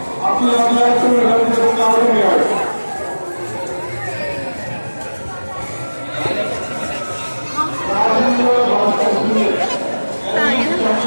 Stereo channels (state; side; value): inverted; both; correlation -1.00